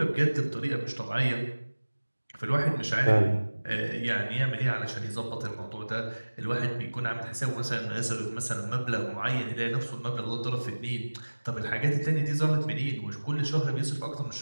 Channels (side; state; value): both; inverted; correlation -1.00